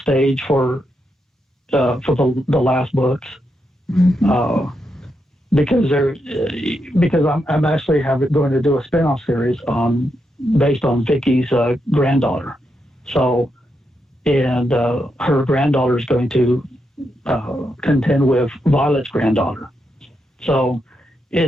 stage for the last books. Because I'm actually going to do a spin-off series based on Vickie's granddaughter. So, and her granddaughter is going to contend with Violet's granddaughter. So,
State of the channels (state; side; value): normal; both; correlation 0.83